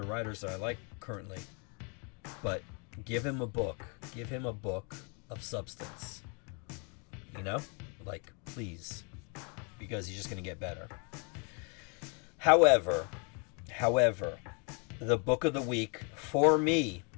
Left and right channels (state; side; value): quieter; right; 35.6 dB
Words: writers that I like currently, but give him a book of substance, you know, like, please, because he's just going to get better. However, the book of the week for me